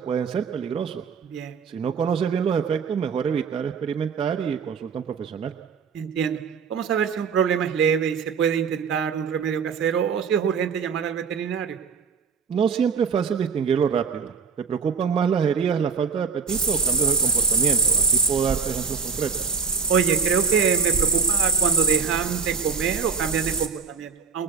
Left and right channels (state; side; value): quieter; left; 5.8 dB